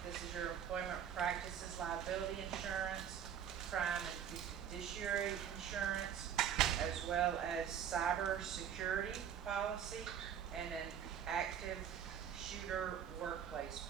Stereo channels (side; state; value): left; quieter; 9.0 dB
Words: This is your employment practices liability insurance, crime and fiduciary insurance, as well as cyber security policy, and an active shooter workplace